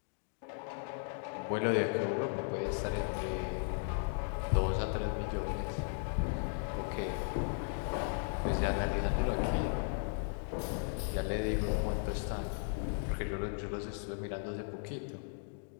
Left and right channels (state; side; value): silent; right; 54 dB below the other